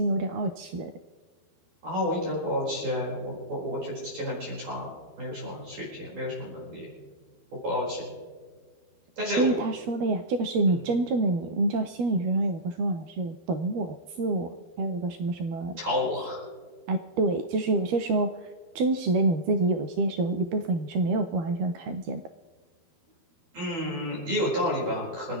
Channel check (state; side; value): late; left; 12 ms